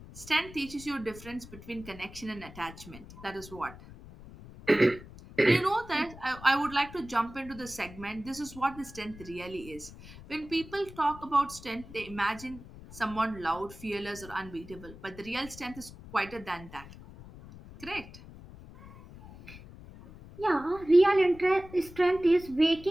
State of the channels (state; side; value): noise; left; rumble, 17 dB below the sound